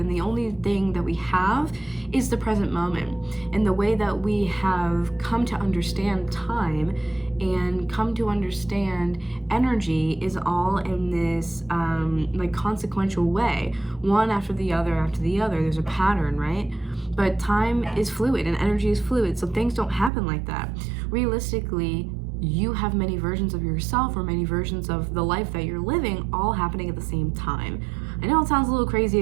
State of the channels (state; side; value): drops out; left; at 20.1 s